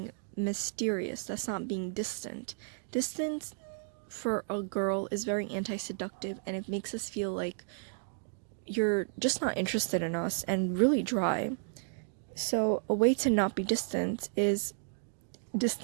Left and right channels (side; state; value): left; silent; digital silence